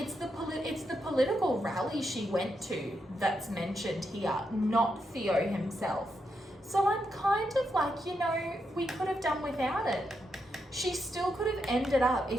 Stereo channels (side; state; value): both; normal; correlation 0.82